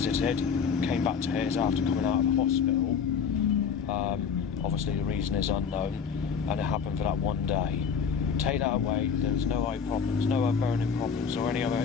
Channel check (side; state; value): right; quieter; 6.4 dB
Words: came back to his after coming out of hospital. Obviously the reason is unknown, and it happened for that one day. Take that away, there was no eye problems, no burning problems or any other